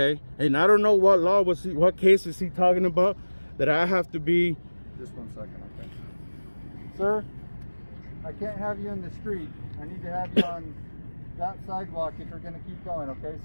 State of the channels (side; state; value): both; inverted; correlation -1.00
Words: and I don't know what case is he talking about that I have to be. Just 1 second, okay. Sir, I can't have you in the street. I need to have you on that sidewalk if you're gonna keep going, okay,